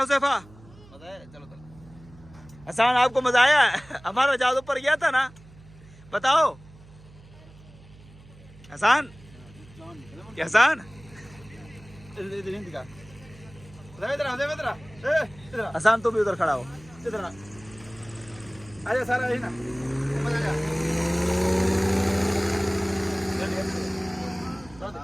मजा आया, चलो चलो। हसन, आपको मजा आया? हमारा जहाज ऊपर गया था ना, बताओ हसन। क्या हसन? हसन तुम भी उधर खड़ा हो, इधर आजा सारा है ना,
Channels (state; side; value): noise; right; hum, 22 dB below the sound